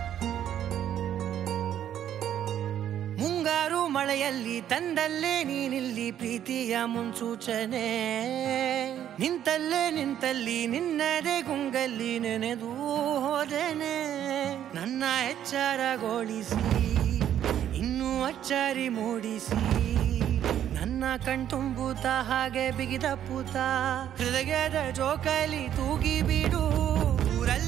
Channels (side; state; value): left; quieter; 10.5 dB